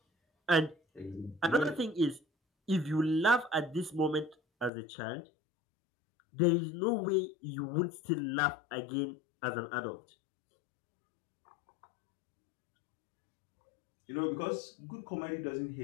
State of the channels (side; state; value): right; drops out; at 4.7 s